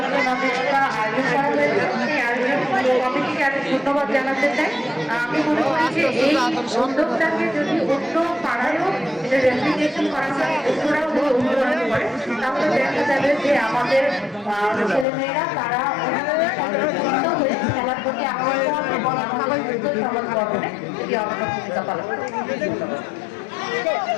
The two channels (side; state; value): right; drops out; at 15.1 s